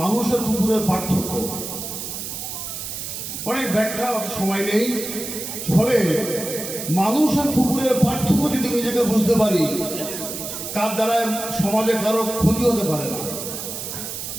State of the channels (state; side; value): noise; right; hiss, 7 dB below the sound